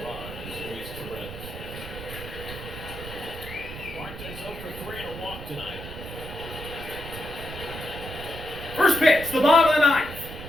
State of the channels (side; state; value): right; noise; rumble, 11 dB below the sound